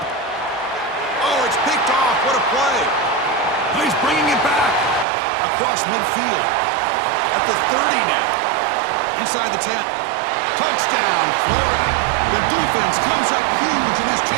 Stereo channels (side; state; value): left; drops out; at 5.1 s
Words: Oh, it's picked off. What a play. He's bringing it back across midfield. At the 30 now. Inside the 10. Touchdown, Florida. The defense comes up huge in this